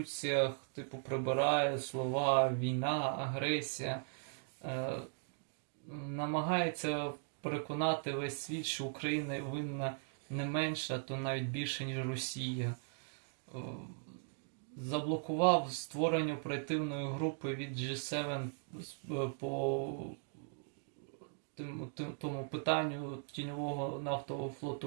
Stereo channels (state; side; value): silent; left; digital silence